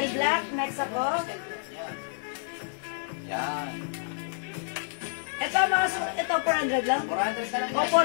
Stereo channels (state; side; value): silent; right; digital silence